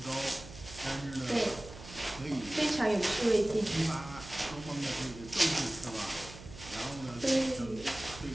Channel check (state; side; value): noise; right; hum, 15 dB below the sound